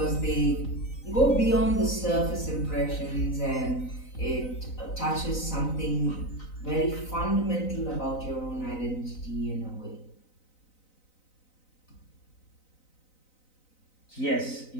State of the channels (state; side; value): late; right; 3.9 ms